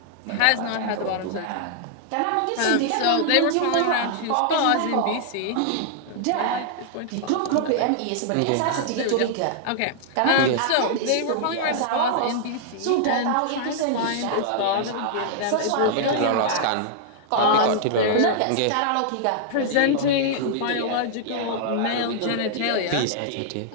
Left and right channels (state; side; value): different; both; correlation -0.01